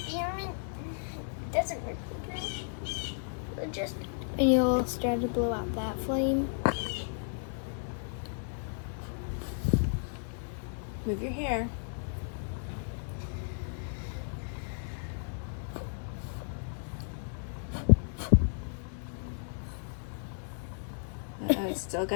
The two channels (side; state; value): right; silent; 55 dB below the other